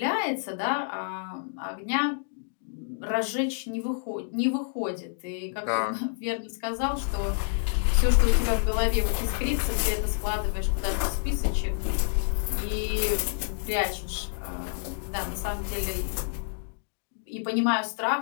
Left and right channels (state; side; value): silent; right; digital silence